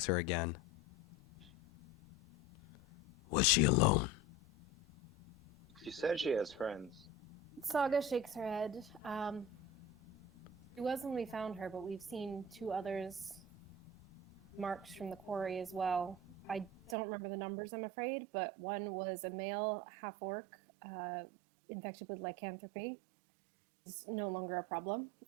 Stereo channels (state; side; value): drops out; left; at 16.9 s